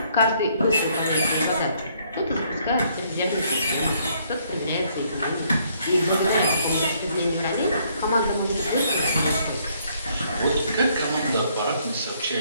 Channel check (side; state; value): both; inverted; correlation -0.68